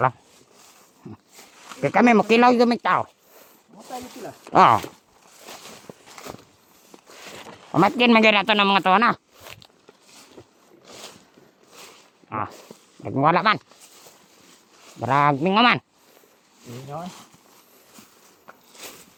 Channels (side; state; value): both; identical; correlation 1.00